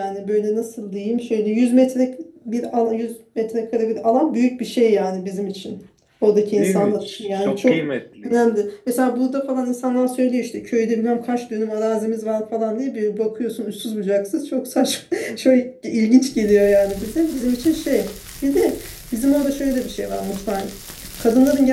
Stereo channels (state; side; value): identical; both; correlation 1.00